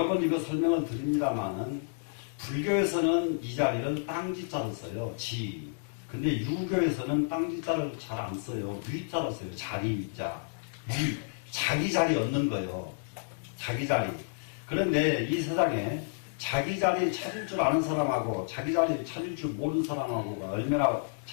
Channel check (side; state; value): right; silent; digital silence